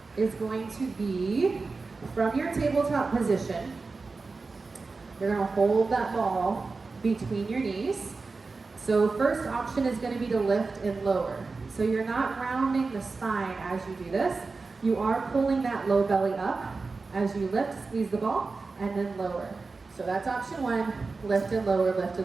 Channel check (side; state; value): left; quieter; 4.1 dB